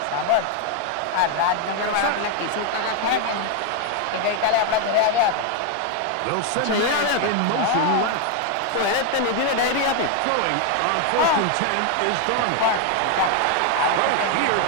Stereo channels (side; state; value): both; different; correlation 0.01